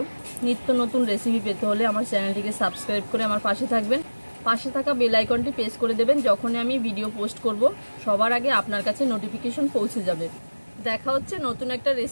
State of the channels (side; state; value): both; inverted; correlation -1.00